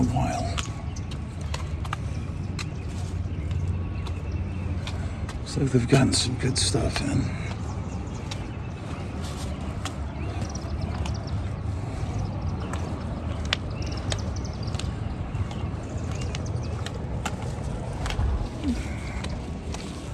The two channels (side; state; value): both; identical; correlation 1.00